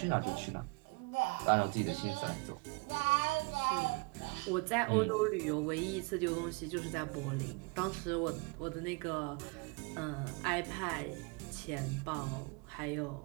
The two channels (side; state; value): left; quieter; 29.1 dB